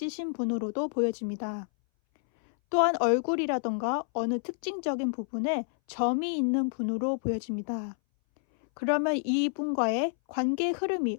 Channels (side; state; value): right; silent; 59 dB below the other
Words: 분으로도 보여집니다. 또한 얼굴이라던가 어느 특징적인 부분에 점이 있는 분으로 보여집니다. 그러면 이분과의 관계